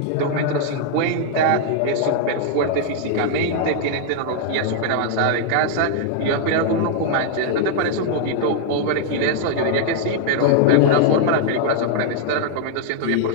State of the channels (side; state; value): both; different; correlation -0.01